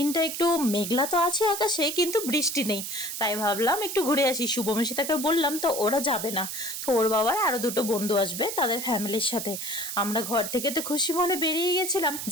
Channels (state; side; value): noise; right; hiss, 6 dB below the sound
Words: একটু মেঘলা তো আছে আকাশে, কিন্তু বৃষ্টি নেই। তাই ভাবলাম একটু ঘুরে আসি। শুভমিশিতাকে বললাম, তো ওরা যাবে না। তো ওর বাবার আরো দুটো বন্ধু আসবে তাদের ফ্যামিলির সাথে। আমরা ঘর থেকে তো খুশি মনে বেরিয়ে গেছিলাম।